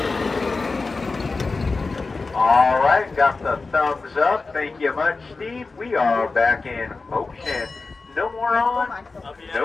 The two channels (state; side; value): quieter; right; 3.9 dB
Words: All right, got the thumbs up. Thank you much, Steve. We are back in motion. No more on,